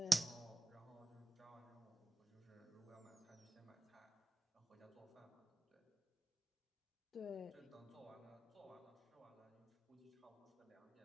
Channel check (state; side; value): normal; both; correlation 0.96